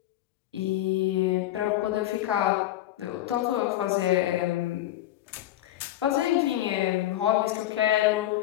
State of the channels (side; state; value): right; quieter; 13.9 dB